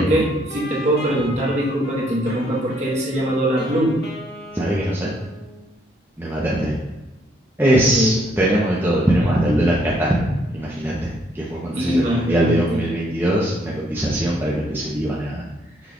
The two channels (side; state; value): both; normal; correlation 0.69